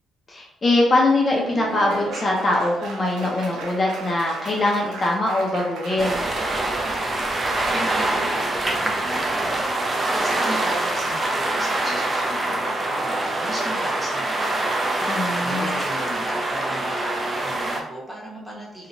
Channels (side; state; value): both; normal; correlation 0.81